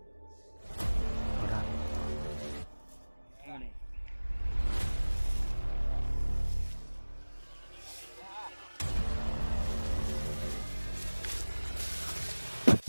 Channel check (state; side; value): inverted; both; correlation -1.00